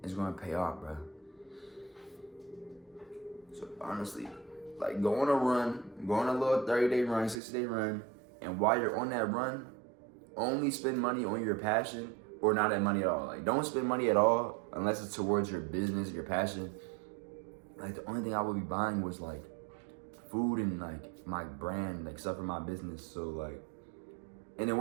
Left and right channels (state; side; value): drops out; left; at 7.4 s